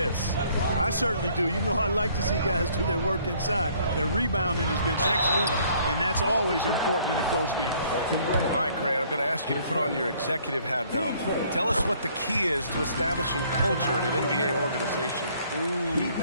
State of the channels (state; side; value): inverted; both; correlation -0.61